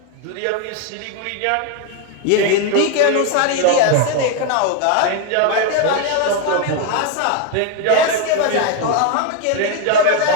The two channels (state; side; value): different; both; correlation 0.01